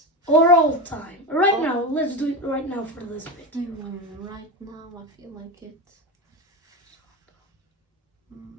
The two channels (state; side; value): normal; both; correlation 0.18